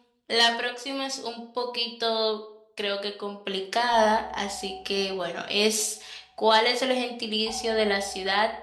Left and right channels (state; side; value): identical; both; correlation 1.00